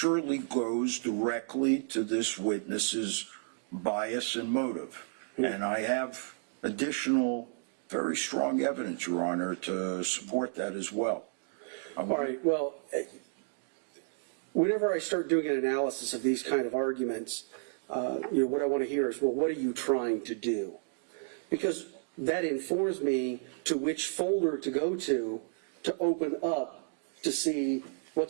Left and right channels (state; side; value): silent; left; digital silence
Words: goes directly to this witness's bias and motive. And I have additional very strong evidence, Your Honor, to support that as well. All right, well, whenever I start doing an analysis of these kind of arguments, what I want to hear is, well, what are you trying to do? Because that informs me to which folder to go to open up to see